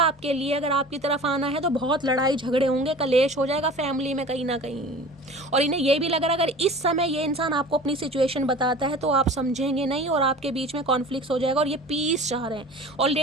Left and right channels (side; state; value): both; normal; correlation 0.40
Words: लिए, अगर आपकी तरफ आना है तो बहुत लड़ाई झगड़े होंगे, कलेश हो जाएगा फैमिली में कहीं ना कहीं। और इन्हें ये भी लग रहा है अगर इस समय ये इंसान आपको अपनी सिचुएशन बताता है तो आप समझेंगे नहीं और आपके बीच में कॉन्फ्लिक्ट हो जाएगा, और ये पीस चाह रहे हैं।